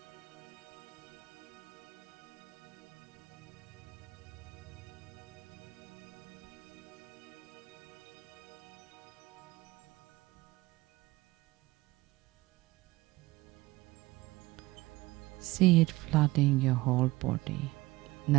See it flooding your whole body.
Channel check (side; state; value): left; quieter; 20.1 dB